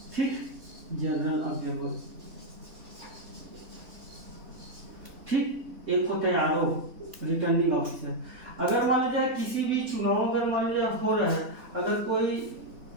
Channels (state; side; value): late; left; 3.8 ms